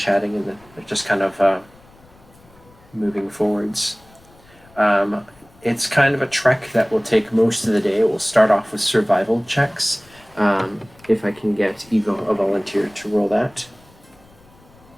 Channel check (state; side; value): noise; left; rumble, 28 dB below the sound